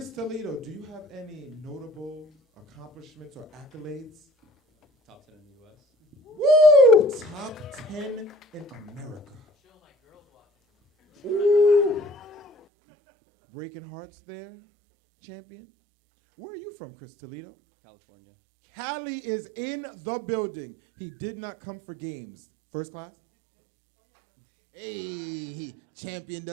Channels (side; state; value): left; drops out; at 12.6 s